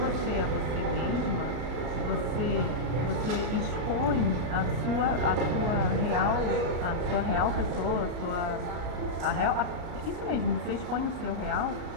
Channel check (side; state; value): left; late; 33 ms